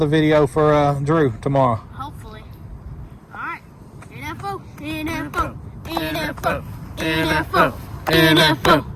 video for Drew tomorrow. hopefully. Alright. NFO, NFO, NFO, NFO, NFO,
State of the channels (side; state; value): both; identical; correlation 1.00